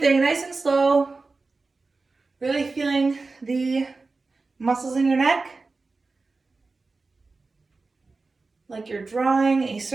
nice and slow. Really feeling the muscles in your neck. Like you're drawing a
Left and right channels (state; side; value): quieter; left; 3.8 dB